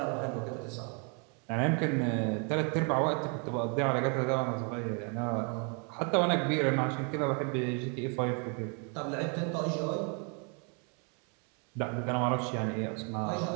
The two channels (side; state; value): left; quieter; 36.5 dB